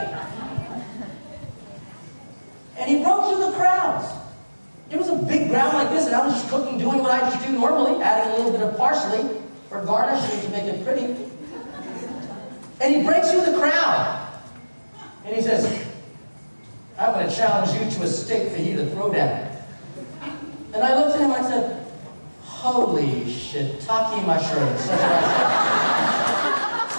And he broke through the crowds. It was a big ground like this, and I was just cooking, doing what I just do normally, adding a little bit of parsley for garnishing to make it pretty. And he breaks through the crowd. And he says, I'm going to challenge you to a steak fajita throwdown. And I looked at him and I said, holy shiitake mushrooms. That's what I said.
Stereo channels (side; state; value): both; inverted; correlation -1.00